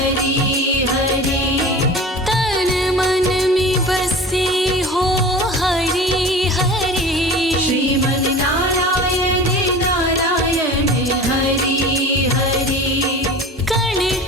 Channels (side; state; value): both; normal; correlation 0.37